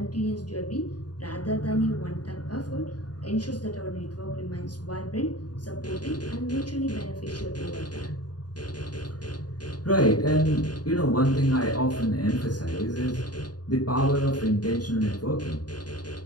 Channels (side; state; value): right; late; 0.69 ms